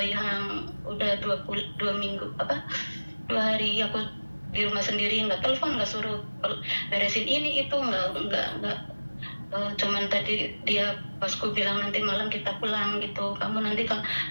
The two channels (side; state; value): both; inverted; correlation -1.00